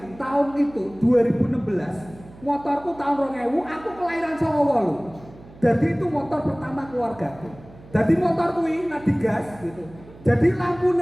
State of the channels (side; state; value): right; noise; hum, 21 dB below the sound